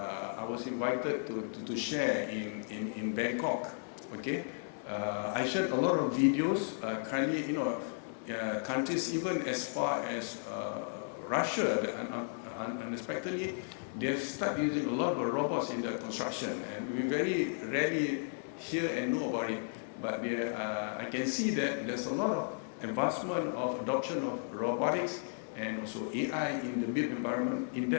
was invited to share in Bangkok, okay, I shared a lot of videos. Currently, countries even as far as Russia, unexpectedly, they've started using a lot of robots in the construction, and we very rarely hear and know about it. But I can see that there's a lot of advancement of adoption of robotics and also AI in the built environment in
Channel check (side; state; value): right; silent; digital silence